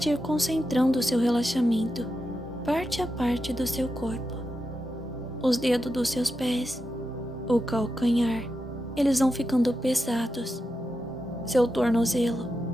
ir concentrando o seu relaxamento parte a parte do seu corpo. Os dedos dos seus pés, o calcanhar, eles vão ficando pesados. Seu tornozelo,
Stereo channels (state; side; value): normal; both; correlation 0.88